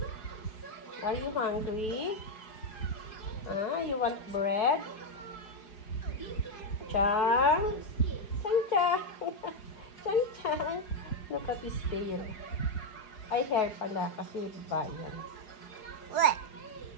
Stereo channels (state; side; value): late; right; 5.2 ms